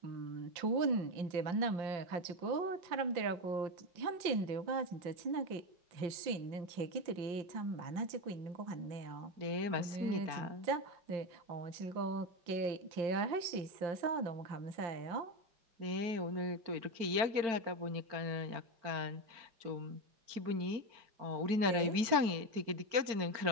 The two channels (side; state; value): left; late; 4.4 ms